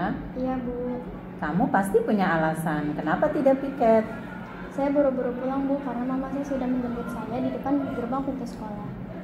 Iya Bu. Kamu pasti punya alasan kenapa tidak piket. Saya buru-buru pulang Bu karena mama saya sudah menjemput saya di depan gerbang pintu sekolah.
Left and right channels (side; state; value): both; identical; correlation 1.00